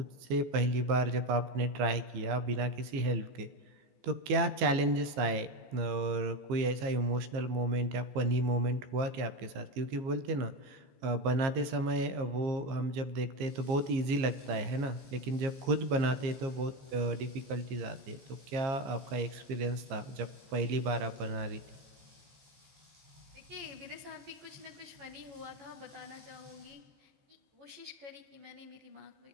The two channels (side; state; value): left; late; 15 ms